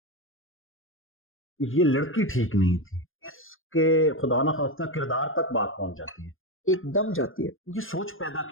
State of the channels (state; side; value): late; right; 0.59 ms